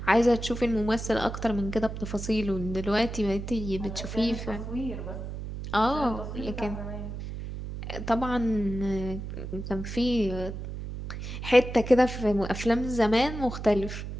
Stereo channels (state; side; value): noise; right; hum, 7 dB below the sound